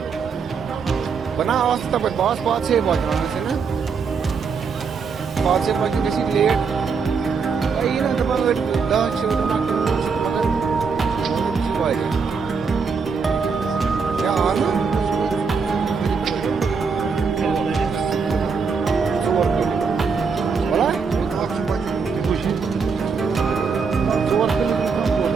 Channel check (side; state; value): left; quieter; 5.4 dB